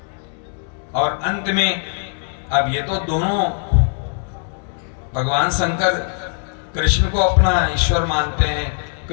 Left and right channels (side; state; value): right; silent; 56 dB below the other